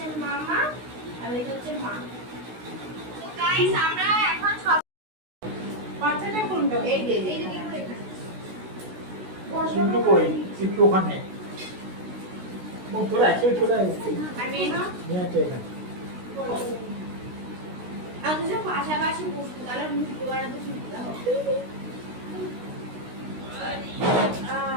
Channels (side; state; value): left; late; 16 ms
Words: মামা, আর এটা হচ্ছে মা। তো গাইস আমরা এখন সব বাচ্চাটা কোনটা এই যে এই যে দেখো এখানে। চিন্টু কই? চিন্টু ওখানে। ও তোরা একসাথে চলে আয়। আর মেয়ে না, হ্যাঁ, তো এখানে। আর দুজন পাশাপাশি বসতো, তাহলে ভিডিও বানাতে সুবিধা হবে।